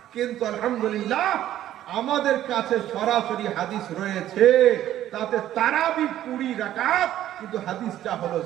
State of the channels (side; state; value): left; quieter; 12.5 dB